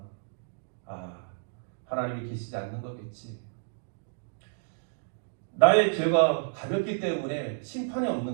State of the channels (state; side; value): silent; left; digital silence